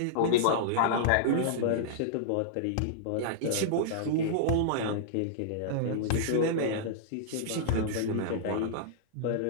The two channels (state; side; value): different; both; correlation -0.03